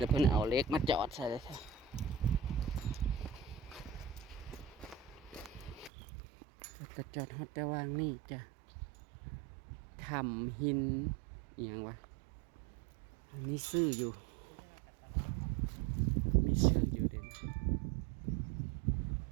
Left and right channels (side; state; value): left; drops out; at 5.9 s